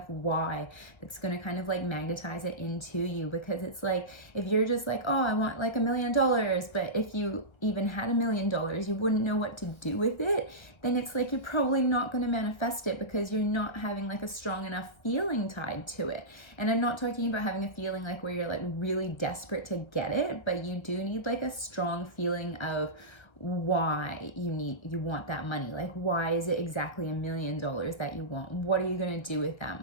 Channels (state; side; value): late; right; 1.3 ms